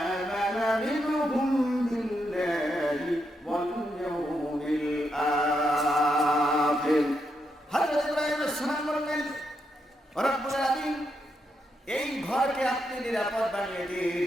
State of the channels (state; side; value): normal; both; correlation 0.81